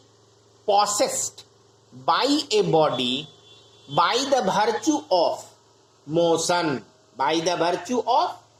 possessed by a body by the virtue of motion,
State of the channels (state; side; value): identical; both; correlation 1.00